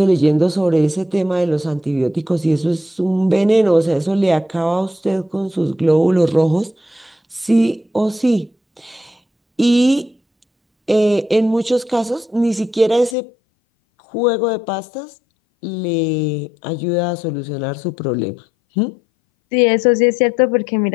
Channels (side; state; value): right; drops out; at 13.2 s